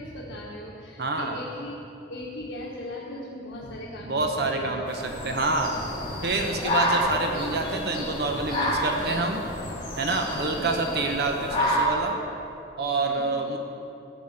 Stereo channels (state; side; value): normal; both; correlation -0.01